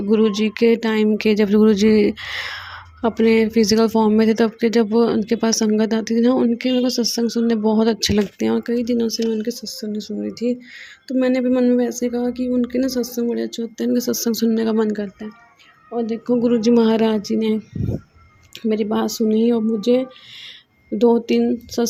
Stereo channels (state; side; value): identical; both; correlation 1.00